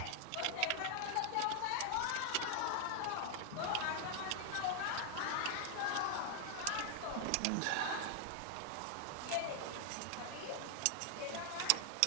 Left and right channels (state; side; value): different; both; correlation 0.00